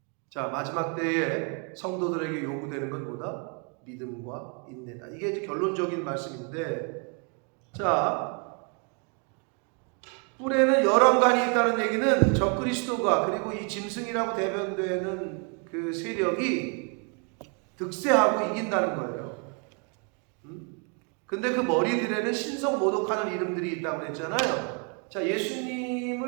자, 마지막 때에 성도들에게 요구되는 건 뭐다? 믿음과 인내다. 이게 이제 결론적인 말씀인데, 자, 뿔에는 열왕관이 있다는 얘기는 적그리스도가, 그리고 이 짐승이라고 대변되는 그 세력이 득세하고 이긴다는 거예요. 근데 그 머리들에는 신성 모독하는 이름들이 있다고 그랬잖아요. 자,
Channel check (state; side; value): quieter; left; 37.3 dB